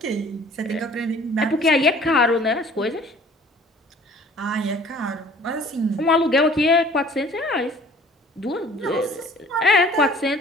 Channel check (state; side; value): normal; both; correlation 0.51